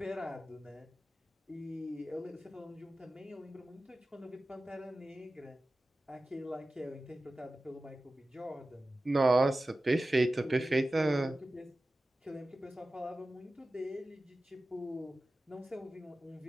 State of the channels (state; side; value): normal; both; correlation 0.95